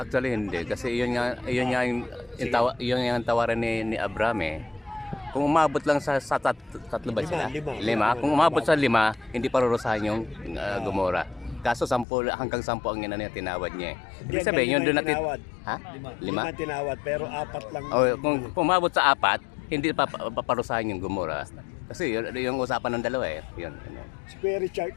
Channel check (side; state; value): right; drops out; at 12.1 s